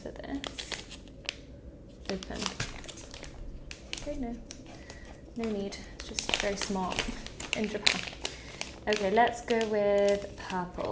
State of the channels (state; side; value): identical; both; correlation 1.00